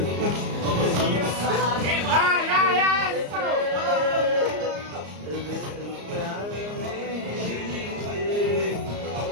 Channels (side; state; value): left; late; 34 ms